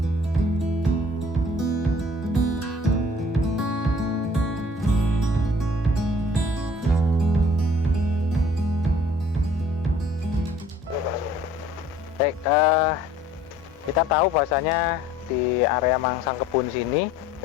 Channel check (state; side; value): normal; both; correlation 0.53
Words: Baik, kita tahu bahwasanya di area Mangsangkebun sini